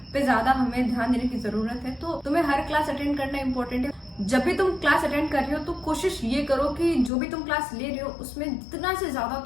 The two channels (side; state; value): right; drops out; at 7.1 s